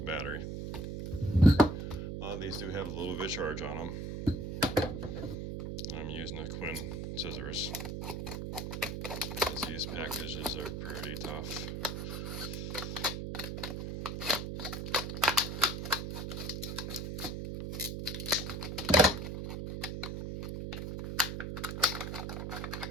battery. A lot of these do have a little bit of charge on them. I'm using the Quinn scissors, because these packages are pretty tough.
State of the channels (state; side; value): noise; right; hum, 4 dB below the sound